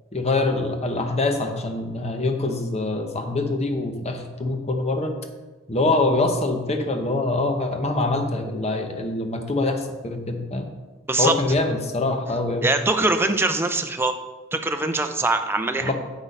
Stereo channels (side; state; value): both; normal; correlation 0.38